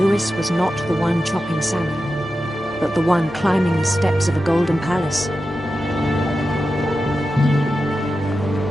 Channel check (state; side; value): normal; both; correlation 0.91